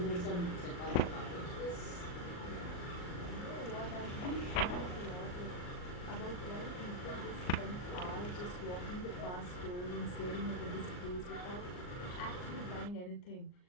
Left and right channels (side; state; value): right; late; 39 ms